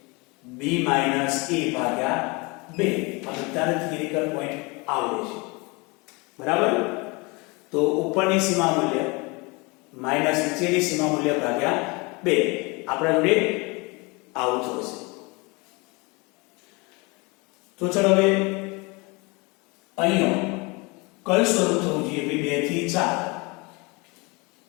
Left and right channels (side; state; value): right; quieter; 27.4 dB